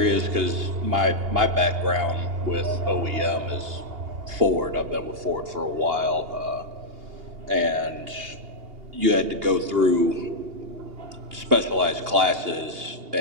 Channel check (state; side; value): late; left; 2.8 ms